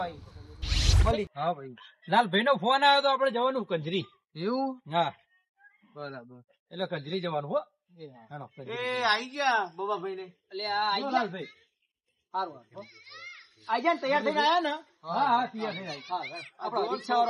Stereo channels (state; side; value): identical; both; correlation 1.00